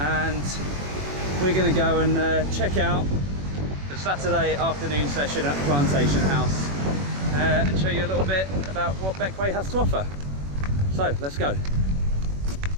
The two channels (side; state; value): left; late; 21 ms